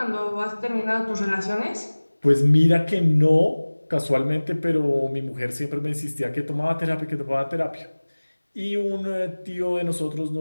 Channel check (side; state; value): both; inverted; correlation -1.00